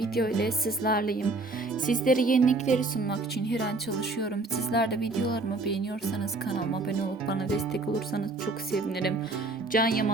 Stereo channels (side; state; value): left; quieter; 3.3 dB